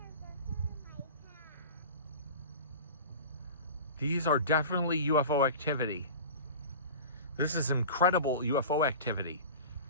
These are definitely UFO activity. This is incredible UFO activity.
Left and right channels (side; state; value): both; inverted; correlation -0.34